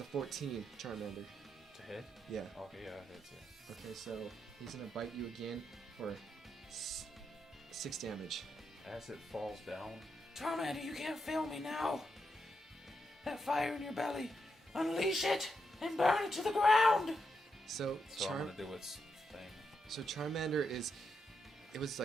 14 Charmander. To hit? Yeah. Okay, yeah, it hits, yeah. Okay, so he's gonna bite you again for 6 damage. As it falls down, Charmander, you can't fail me now. That fire in your belly, unleash it and burn it to the ground. So I'm gonna do its thing. So Charmander it was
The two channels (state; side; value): normal; both; correlation 0.83